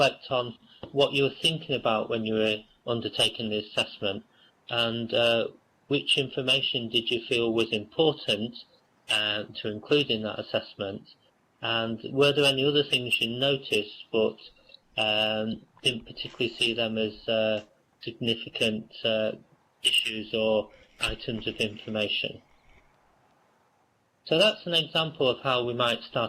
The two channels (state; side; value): identical; both; correlation 1.00